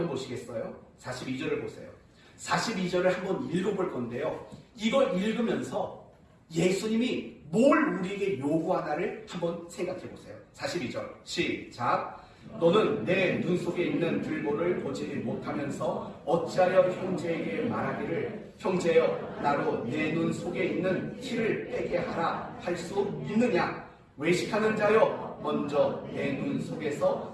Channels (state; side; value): identical; both; correlation 1.00